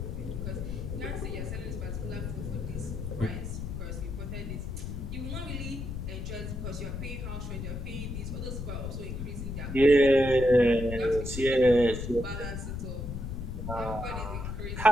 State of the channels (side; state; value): left; noise; rumble, 5 dB below the sound